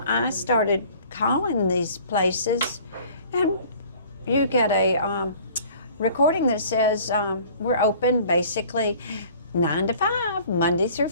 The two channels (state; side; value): inverted; both; correlation -0.50